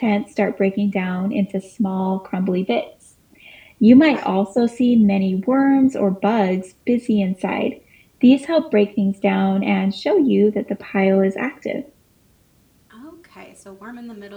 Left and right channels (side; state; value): both; identical; correlation 1.00